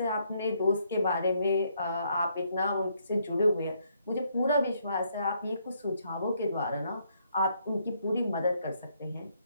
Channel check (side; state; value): both; inverted; correlation -0.72